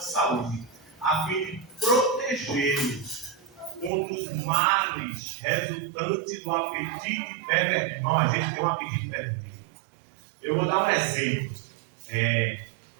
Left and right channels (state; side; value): drops out; left; at 3.9 s